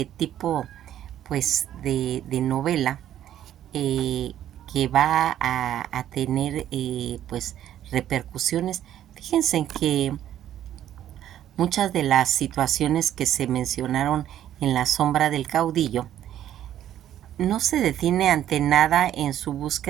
tipo pues de novela que va a tener pues repercusiones. Fíjense en que muchas de las situaciones que se mencionaron en La sombra del caudillo no se detiene ante nada en su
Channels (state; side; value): quieter; left; 11.5 dB